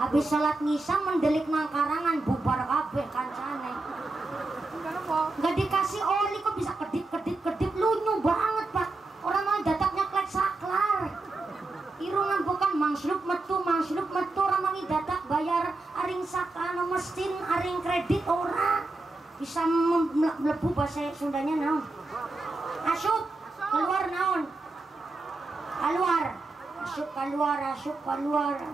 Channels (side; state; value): left; quieter; 3.2 dB